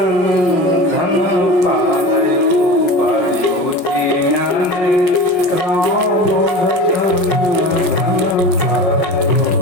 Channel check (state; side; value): late; right; 6.0 ms